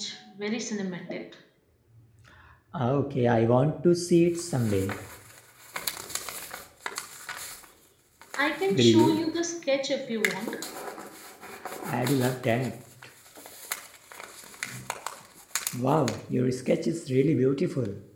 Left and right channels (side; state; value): both; identical; correlation 1.00